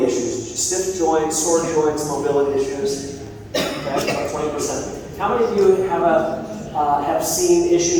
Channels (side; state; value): both; identical; correlation 1.00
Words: issues, stiff joints, sore joints, mobility issues? Okay, about 20%. How many of you have seen